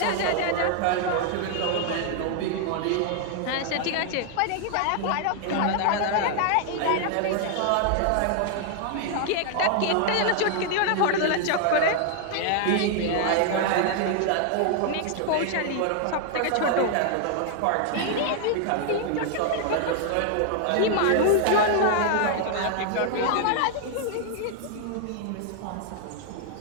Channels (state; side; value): different; both; correlation 0.00